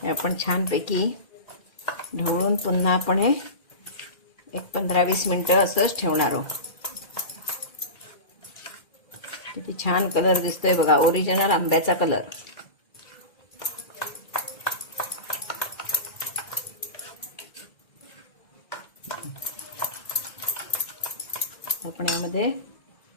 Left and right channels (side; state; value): right; late; 2.3 ms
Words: हे आपण छानपैकी ढवळून पुन्हा आपण हे 15-20 मिनिटं असंच ठेवणार आहोत. किती छान कलर दिसतोय बघा, ओरिजिनल आंब्याचा कलर. आपण यामध्ये